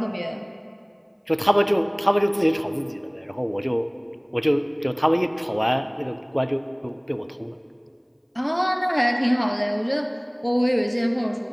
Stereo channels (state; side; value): identical; both; correlation 1.00